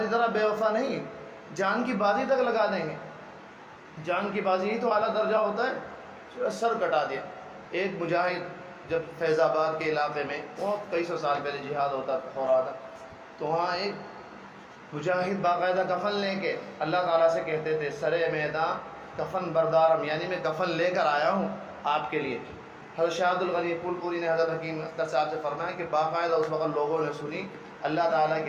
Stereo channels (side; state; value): both; identical; correlation 1.00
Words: طرح بے وفا نہیں، جان کی بازی تک لگا دیں گے. جان کی بازی ہی تو اعلیٰ درجہ ہوتا ہے. سر کٹا دیا. ایک مجاہد جب فیض آباد کے علاقے میں بہت کئی سو سال پہلے جہاد ہو رہا تھا تو وہاں ایک مجاہد باقاعدہ کفن لے کے اللہ تعالیٰ سے کہتے تھے سرے میدان کفن بردارم، یعنی میں کفن لے کر آیا ہوں آپ کے لیے. حضرت شاہ عبد الغنی پھول پوری نے حضرت حکیم اختر صاحب سے فرمایا کہ باقاعدہ اس وقت لوگوں نے سنی اللہ تعالیٰ